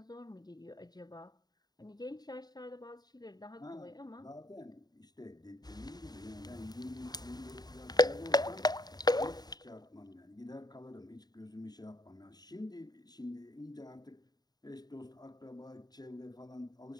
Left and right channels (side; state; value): right; late; 0.19 ms